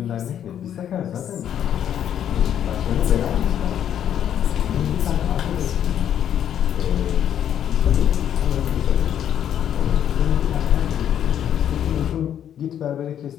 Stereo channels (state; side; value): quieter; right; 9.8 dB